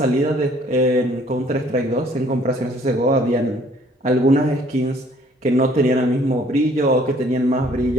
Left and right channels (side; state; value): both; normal; correlation 0.59